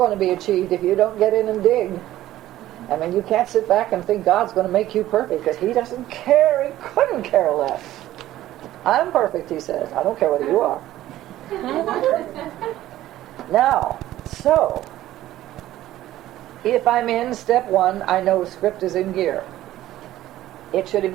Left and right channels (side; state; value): left; quieter; 14.3 dB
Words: to be achieved if you don't get in and dig. I mean, you can't sit back and think God's going to make you perfect, because He doesn't care. He couldn't care less. I'm perfect, He says. I don't care whether you are. Now, so, if I'm in step 1, I know script is in gear. It should